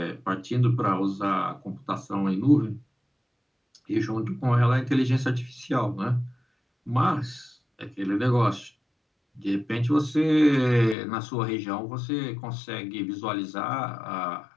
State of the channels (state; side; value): drops out; right; at 11.0 s